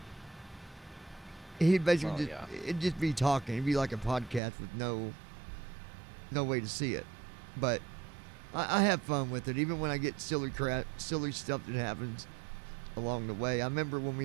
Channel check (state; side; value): drops out; left; at 4.4 s